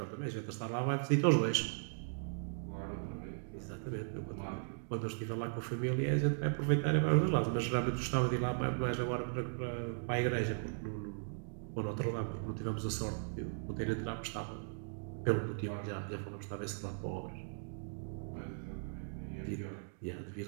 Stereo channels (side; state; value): left; silent; digital silence